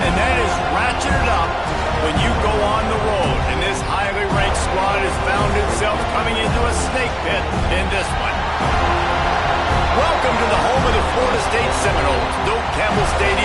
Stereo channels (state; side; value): identical; both; correlation 1.00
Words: that is ratcheted up when you go on the road. And this highly ranked squad has found itself coming into a snake pit in this one. Welcome to the home of the Florida State Seminoles, Doak Campbell